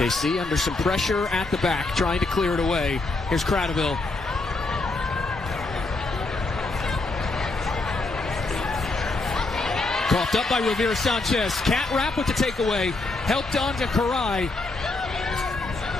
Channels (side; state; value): right; quieter; 3.3 dB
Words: under some pressure at the back, trying to clear it away. Here's Cradaville. Coughed up by Rivera Sanchez. Cat wrap with the takeaway. Helped on to Karai.